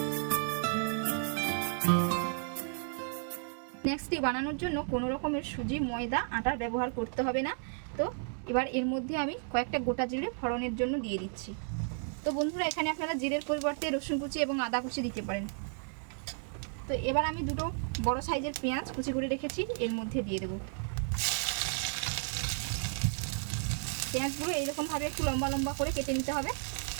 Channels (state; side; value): silent; left; 56 dB below the other